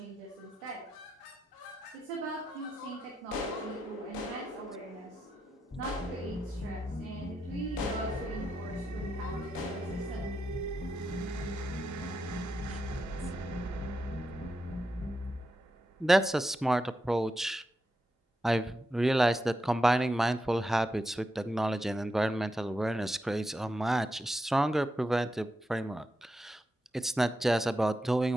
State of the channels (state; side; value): normal; both; correlation 0.86